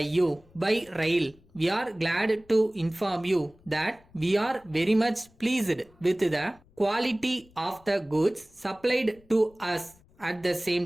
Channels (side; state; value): left; noise; rumble, 29 dB below the sound